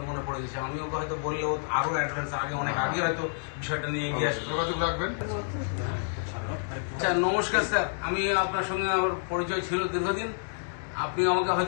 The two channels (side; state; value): right; silent; digital silence